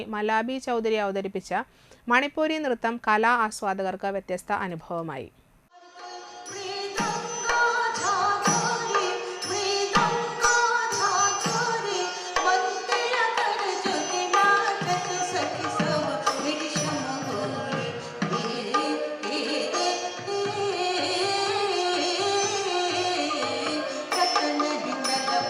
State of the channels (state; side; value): identical; both; correlation 1.00